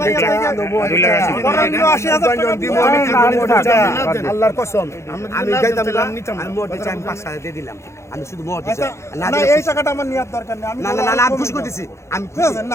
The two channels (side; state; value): right; late; 0.13 ms